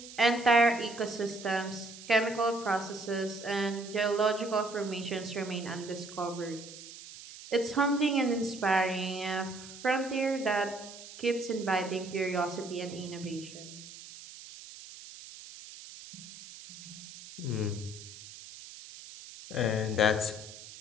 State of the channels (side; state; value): right; noise; hiss, 15 dB below the sound